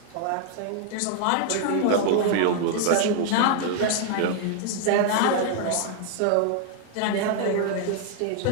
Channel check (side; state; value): both; different; correlation 0.00